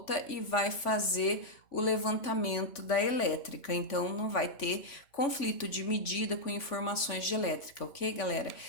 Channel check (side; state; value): right; late; 3.5 ms